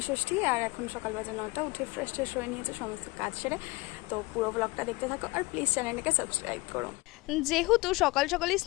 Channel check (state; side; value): quieter; right; 23.2 dB